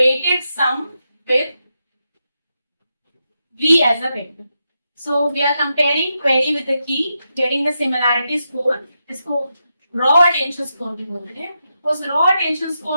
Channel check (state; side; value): inverted; both; correlation -0.86